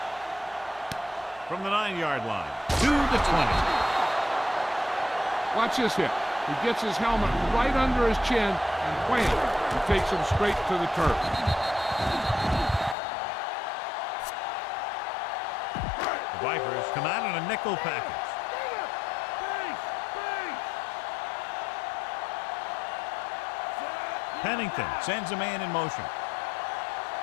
From the 9-yard line to the 20. Watch this hit. He gets his helmet right under his chin, and wham, he takes him straight to the turf. The Vipers come out in a nickel package. Pennington sends a man in motion.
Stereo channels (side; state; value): right; drops out; at 13.0 s